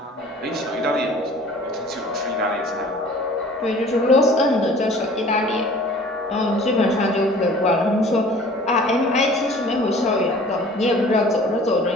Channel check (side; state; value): both; normal; correlation 0.48